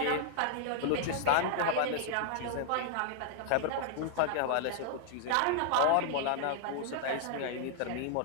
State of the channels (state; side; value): different; both; correlation -0.01